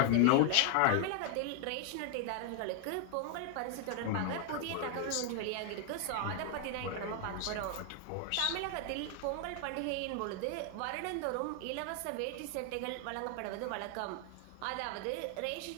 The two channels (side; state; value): both; different; correlation 0.00